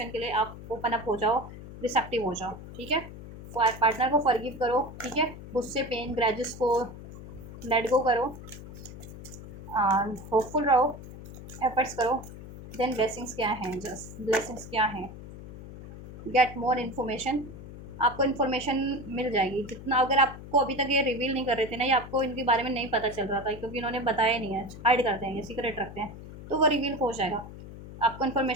के लिए आप ओपन अप हो जाओ, रिसेप्टिव हो जाओ, ठीक है। पार्टनर को फॉरगिव करो, ठीक है। गुस्से, पेन, ग्रजेस को लेट गो करो, होपफुल रहो, एफर्ट्स करो। देन ब्लेसिंग्स क्या हैं, जस्ट ब्लेसिंग्स क्या हैं, गेट मोर इन्फॉर्मेशन। आपको इन्फॉर्मेशन मिल जाएगी जितना, अगर आपको अभी तक ये रिवील नहीं कर रहे थे ना, या आपको इनके बारे में नहीं पता चल रहा था क्योंकि इन्होंने बताया नहीं है, हाइड करते हैं, ये सीक्रेट रखते हैं, तो वो रिवील हो जाएगा। आपको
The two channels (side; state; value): left; noise; hum, 14 dB below the sound